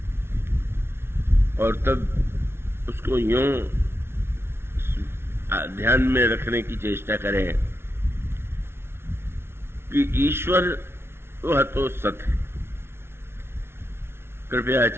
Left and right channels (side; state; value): left; late; 0.12 ms